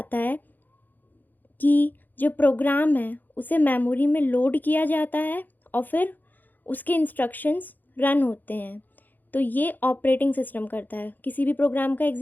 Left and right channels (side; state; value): right; late; 0.086 ms